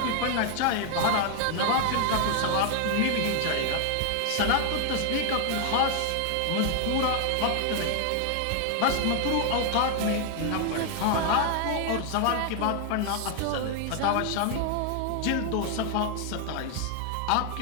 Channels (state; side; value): different; both; correlation 0.00